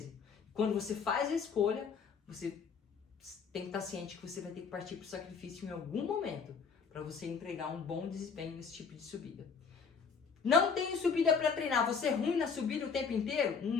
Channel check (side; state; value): right; quieter; 5.8 dB